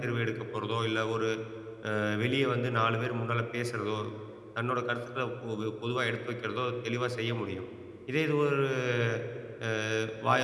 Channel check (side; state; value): both; identical; correlation 1.00